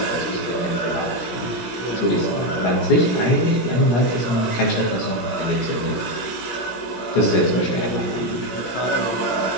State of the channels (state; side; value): late; right; 17 ms